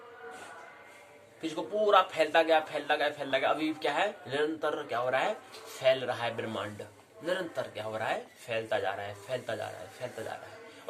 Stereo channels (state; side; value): identical; both; correlation 1.00